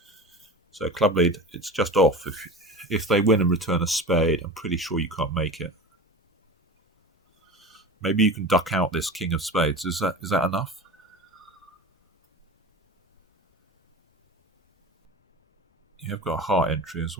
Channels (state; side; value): normal; both; correlation 0.31